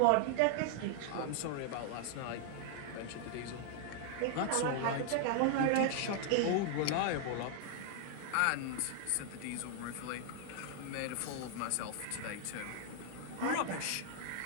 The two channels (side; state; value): both; different; correlation 0.00